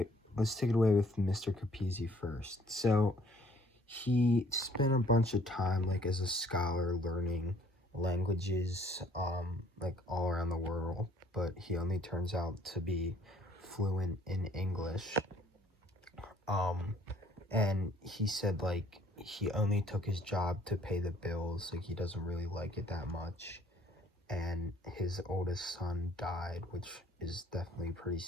Let's take it away with Mr. Capizzi first. So he spent a bunch of time like as a scholar learning languages like all around the world, but he only turns out to be fluent in English. Um, and he said like he only took his job to pay the bills, like he doesn't really like it that much. And his oldest son died, which is definitely pretty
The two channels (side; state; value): both; normal; correlation 0.60